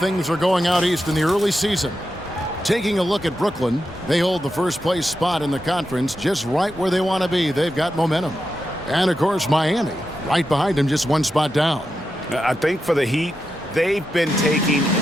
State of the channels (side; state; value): both; normal; correlation 0.88